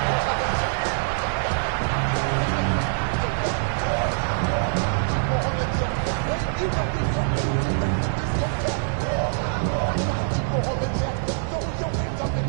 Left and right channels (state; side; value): silent; left; 58 dB below the other